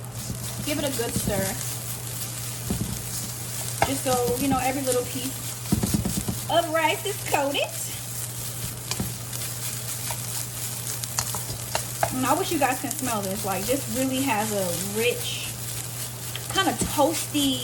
Give it a good stir. Just so, you know, every little piece of rice is coated. And I wish you guys can smell this. Like, this really has a rich, kind of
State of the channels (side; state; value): both; identical; correlation 1.00